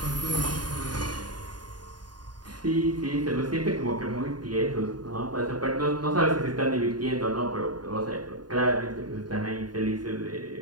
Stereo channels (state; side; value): late; left; 0.70 ms